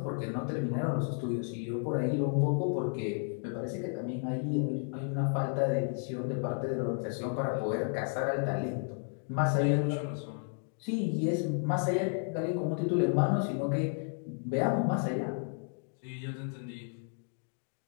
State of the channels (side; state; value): right; silent; 56 dB below the other